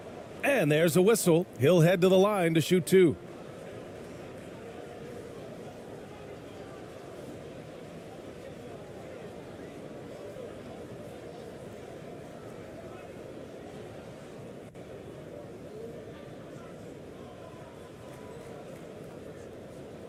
And there's a whistle. He'll head to the line to shoot 2.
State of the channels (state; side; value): identical; both; correlation 1.00